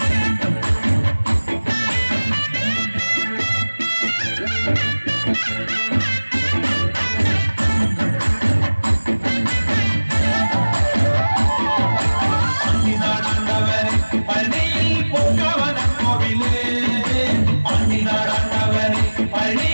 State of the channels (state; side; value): inverted; both; correlation -1.00